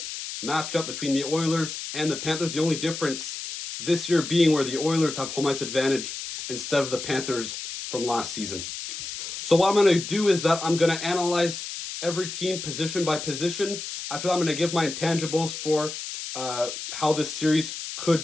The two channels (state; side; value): noise; left; hiss, 7 dB below the sound